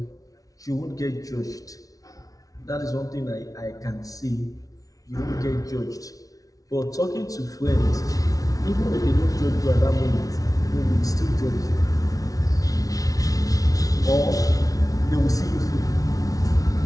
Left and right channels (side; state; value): right; late; 0.18 ms